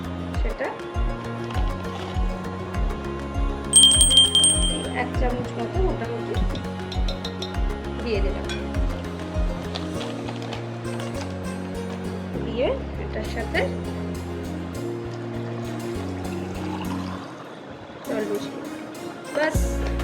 সেটা 1 চামচ মতো মোটামুটি দিয়ে দিলাম। দিয়ে এটার সাথে জল মিশিয়ে বাস,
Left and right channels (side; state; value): both; identical; correlation 1.00